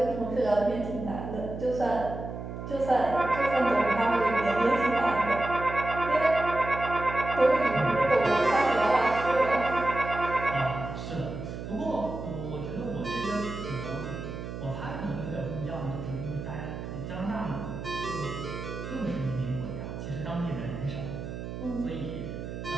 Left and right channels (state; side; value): noise; right; hum, 8 dB below the sound